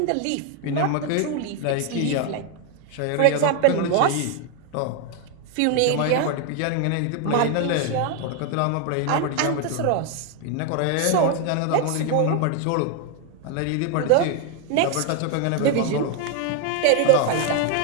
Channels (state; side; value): different; both; correlation 0.01